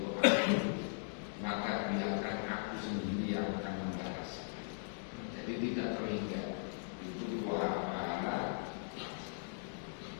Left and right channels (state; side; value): silent; right; digital silence